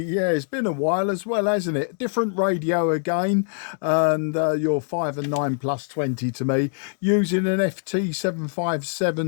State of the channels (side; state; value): right; silent; digital silence